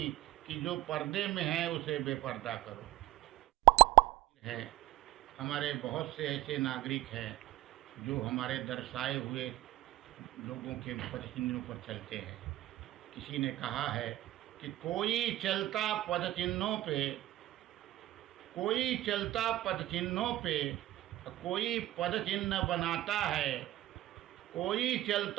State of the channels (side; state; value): left; quieter; 16.0 dB